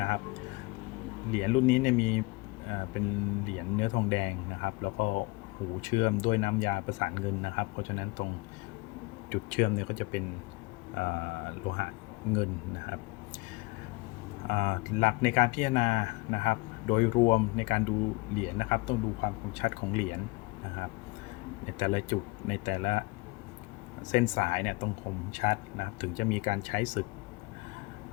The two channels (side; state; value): right; quieter; 25.0 dB